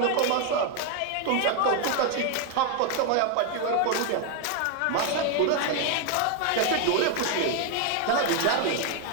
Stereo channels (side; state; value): both; different; correlation 0.01